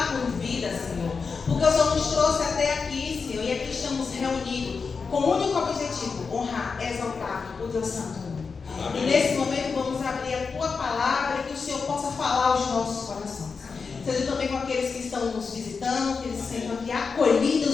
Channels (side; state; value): right; quieter; 5.1 dB